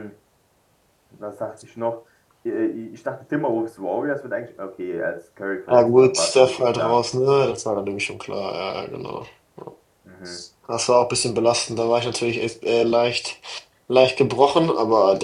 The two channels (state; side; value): identical; both; correlation 1.00